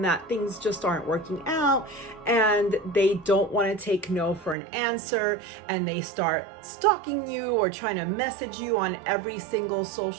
that things just aren't working out and they don't want to take no for an answer, and they start stalking you or trying to message you on every single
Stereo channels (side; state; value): left; drops out; at 4.5 s